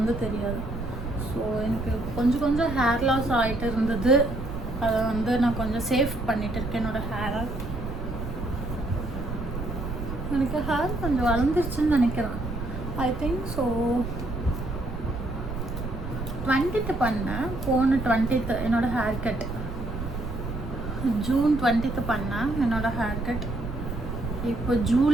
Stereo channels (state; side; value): noise; right; rumble, 7 dB below the sound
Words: தெரியாது. ஸோ எனக்கு கொஞ்சம் ஹேர் லாஸ் ஆகிட்டு இருந்தது, அதை வந்து நான் கொஞ்சம் சேவ் பண்ணிகிட்டு இருக்கேன் என்னோடய ஹேரை. எனக்கு ஹேர் கொஞ்சம் வளர்ந்துருச்சுன்னு நினைக்கிறேன், ஐ திங்க். ஸோ 20th பண்ணேன், போன 20th என்னோடய ஹேர் கட், ஜூன் 20th பண்ணேன் என்னோடய ஹேர் கட். இப்போ